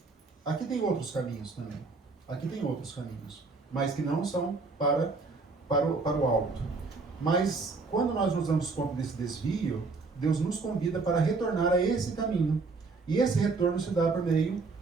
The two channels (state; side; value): quieter; left; 4.0 dB